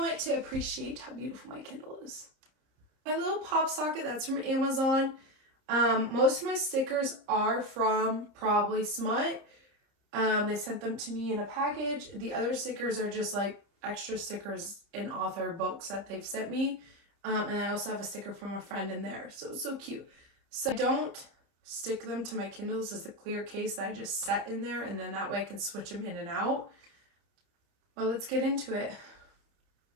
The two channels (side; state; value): left; late; 30 ms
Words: to appreciate how beautiful my Kindle is? My little pop socket, that's from Amazon. Most of my stickers are from probably Smut. They sent them to me in a package. The other stickers are just like extra stickers in author books that they've sent me. And I also have a sticker from a friend in there. So it's so cute. So I don't stick them to my Kindle. This is a clear case that I just set in there, and then that way I can switch them in and out. Well, let's get into it.